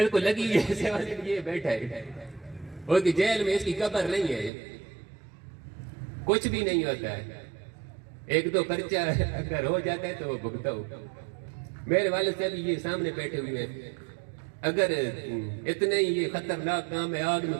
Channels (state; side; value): drops out; left; at 4.5 s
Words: کو لگی ہے 780 یہ بیٹھا ہے، اور کہ جیل میں اس کی قبر نہیں ہے، کچھ بھی نہیں ہوتا ہے، ایک دو پرچہ اگر ہو جاتا ہے تو وہ بھگتا ہو۔ میرے والد صاحب یہ سامنے بیٹھے ہوئے ہیں، اگر اتنے ہی یہ خطرناک کام ہے، آگ میں